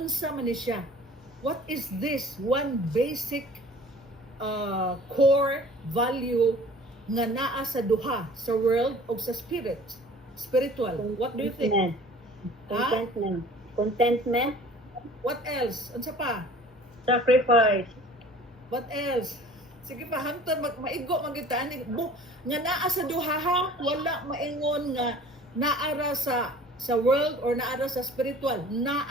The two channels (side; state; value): both; normal; correlation 0.47